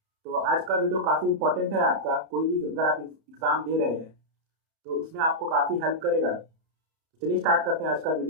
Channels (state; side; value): late; left; 31 ms